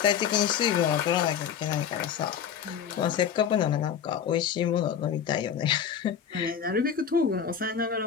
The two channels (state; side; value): quieter; right; 8.1 dB